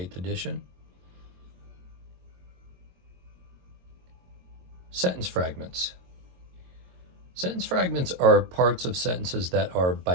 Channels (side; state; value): left; late; 22 ms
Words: edition. Sentence fragments. Sentence fragments are parts of sentences that are,